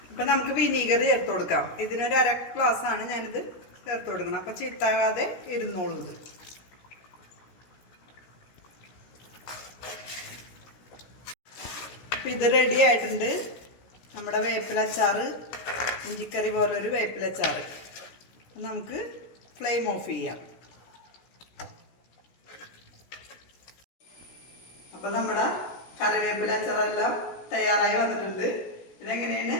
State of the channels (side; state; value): right; late; 16 ms